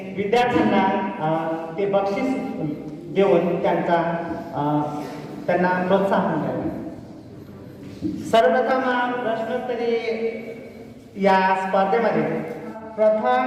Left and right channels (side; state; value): both; identical; correlation 1.00